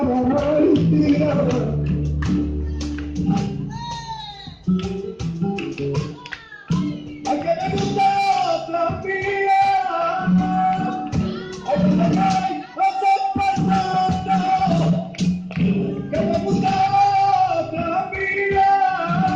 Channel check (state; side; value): identical; both; correlation 1.00